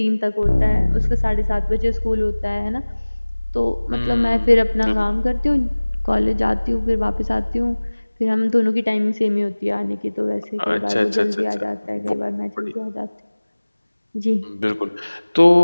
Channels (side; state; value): both; inverted; correlation -1.00